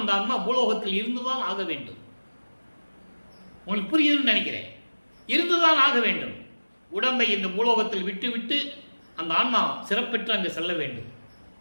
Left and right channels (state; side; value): inverted; both; correlation -1.00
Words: அம்மா பூலோகத்தில் இருந்துதான் ஆக வேண்டும். உங்களுக்கு புரியுதுன்னு நினைக்கிறேன். இருந்துதான் ஆக வேண்டும். உடம்பை இந்த பூலோகத்தில் விட்டுவிட்டு அந்த ஆன்மா சிறப்பெற்று அங்கு செல்ல வேண்டும்.